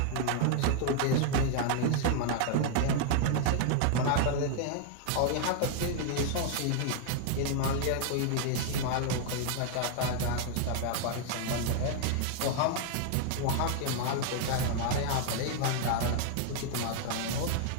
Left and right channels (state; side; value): different; both; correlation 0.00